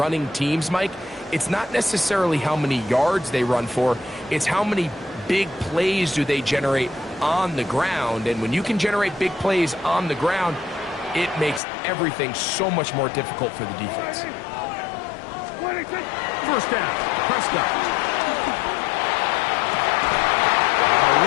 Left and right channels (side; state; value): right; drops out; at 11.6 s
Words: teams, Mike, it's not necessarily how many yards they run for, it's how many big plays do they generate on the ground. And when you can generate big plays on the ground, it makes everything so much more difficult for the defense. 26. First down, Prescott.